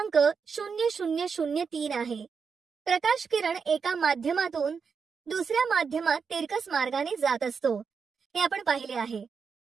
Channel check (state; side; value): quieter; left; 5.8 dB